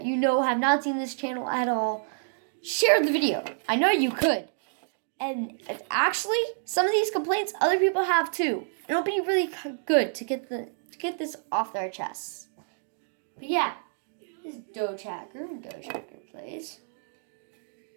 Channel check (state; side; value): silent; left; digital silence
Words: you know have not seen this channel at all, share the video. I know you could. And actually, some of these complaints other people have too. It'll be really good to get this off their chests. But yeah, this is Doge Hacker and Doge Hacker Plays.